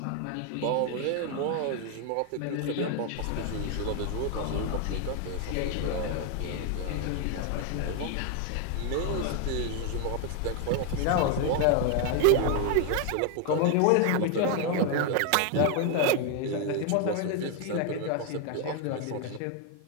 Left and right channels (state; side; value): different; both; correlation 0.01